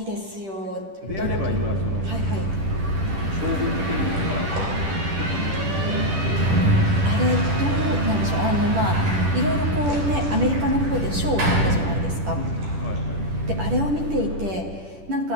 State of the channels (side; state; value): left; late; 10 ms